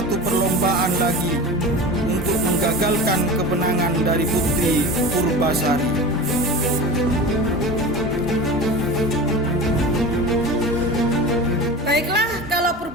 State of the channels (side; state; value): both; normal; correlation 0.31